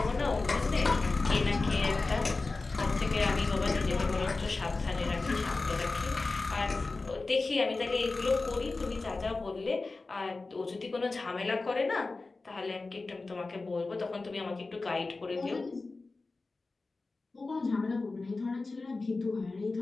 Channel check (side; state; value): right; quieter; 3.6 dB